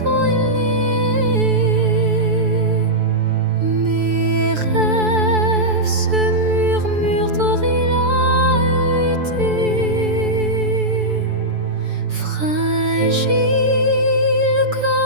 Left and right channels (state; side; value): late; left; 6.9 ms